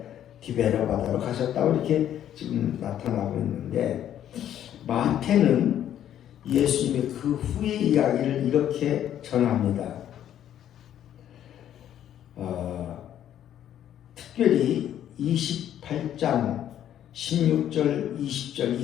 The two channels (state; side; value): quieter; right; 10.8 dB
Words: 디베랴 바다로 가셨다고 이렇게 지금 나타나고 있는데, 마태는 예수님의 그 후의 이야기를 이렇게 전합니다. 특별히 28장 16절 20절